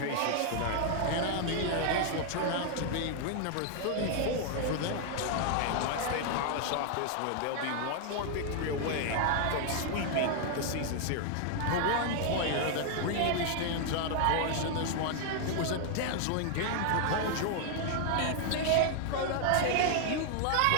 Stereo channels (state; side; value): different; both; correlation 0.00